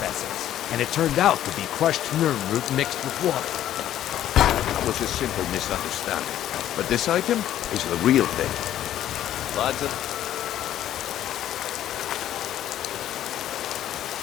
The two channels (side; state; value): right; quieter; 11.9 dB